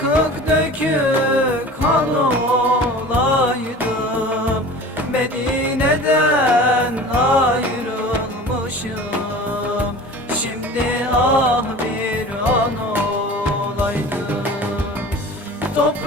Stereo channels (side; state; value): both; normal; correlation 0.39